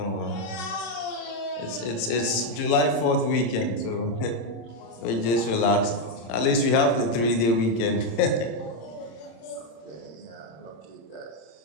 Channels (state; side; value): late; right; 26 ms